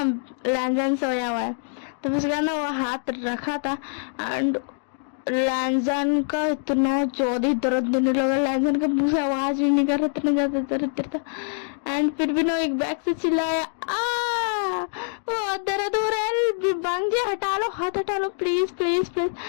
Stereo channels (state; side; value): silent; right; digital silence